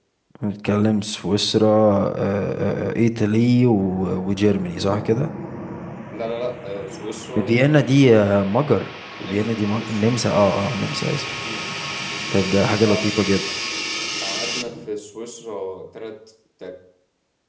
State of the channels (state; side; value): identical; both; correlation 1.00